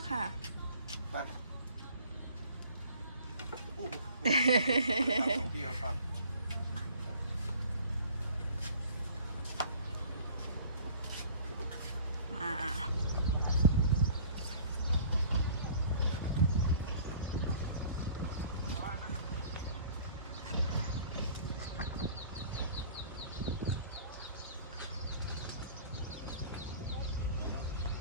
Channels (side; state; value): both; inverted; correlation -0.49